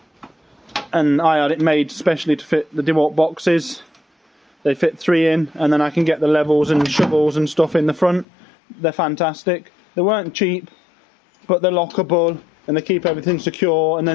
I had it made specially to fit the DeWalt boxes. They fit 3 in, and then I can get the levels and shovels and stuff in the front. They're fantastic. They weren't cheap, but they're lockable and they keep everything secure, and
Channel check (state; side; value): drops out; right; at 8.2 s